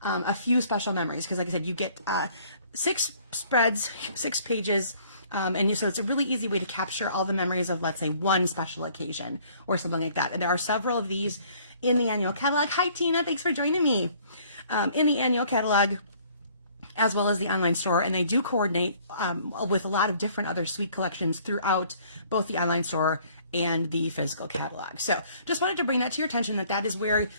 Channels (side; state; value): both; inverted; correlation -0.58